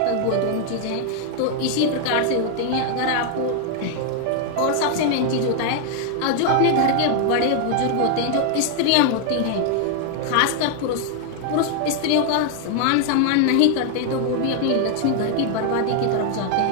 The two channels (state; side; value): different; both; correlation 0.00